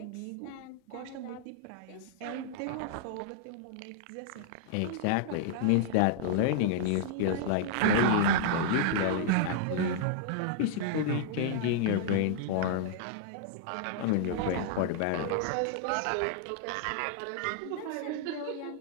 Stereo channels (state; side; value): different; both; correlation -0.01